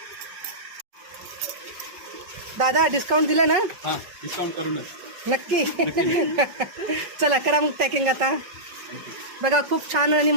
दादा डिस्काउंट दिलं ना? हां, डिस्काउंट करूनच. नक्की. चला करा मग पॅकिंग आता. बघा खूप छान आणि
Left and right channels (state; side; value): late; left; 5.4 ms